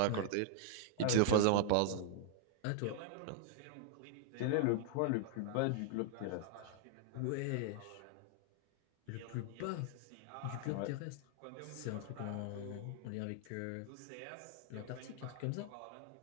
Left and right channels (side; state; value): both; different; correlation 0.00